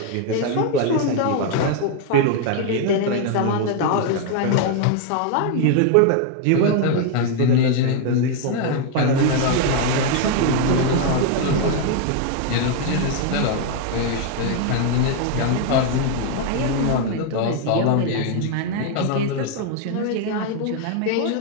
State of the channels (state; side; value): different; both; correlation 0.01